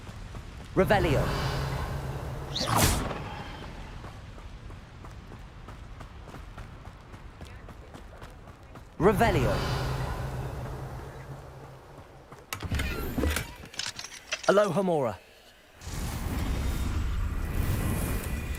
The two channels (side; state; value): both; identical; correlation 1.00